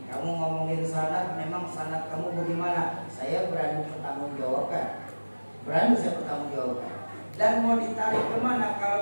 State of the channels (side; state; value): both; inverted; correlation -1.00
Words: kamu ngomongin sanad, memang sanad kamu bagaimana? Saya berani bertanggungjawabkan. Dan mau ditarik kemana